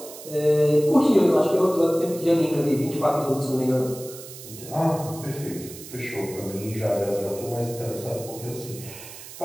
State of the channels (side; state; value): right; noise; hiss, 14 dB below the sound